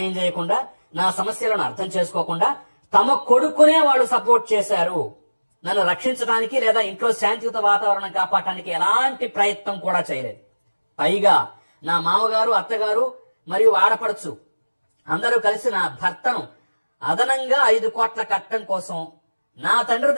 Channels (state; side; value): inverted; both; correlation -1.00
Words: చేయకుండా, నా సమస్యలను అర్థం చేసుకోకుండా తమ కొడుకునే వాళ్ళు సపోర్ట్ చేశారు. నన్ను రక్షించడానికి లేదా ఇంట్లో శాంతియుత వాతావరణం కాపాడటానికి ఎలాంటి ప్రయత్నం కూడా చేయలేదు. పైగా నా మామగారు, అత్తగారు మరియు ఆడపడుచు అందరూ కలిసి నా భర్తను అదనంగా 5 కోట్ల కట్టడం కోసం నా తండ్రి